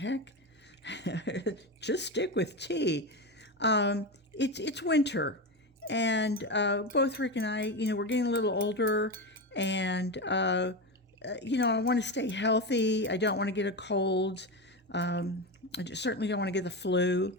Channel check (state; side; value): normal; both; correlation 0.18